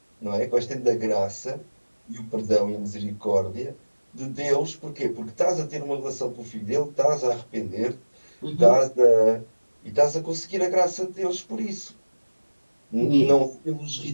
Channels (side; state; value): both; inverted; correlation -1.00